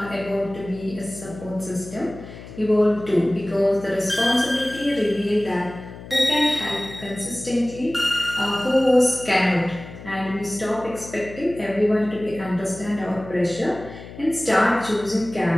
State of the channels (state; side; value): noise; left; hum, 15 dB below the sound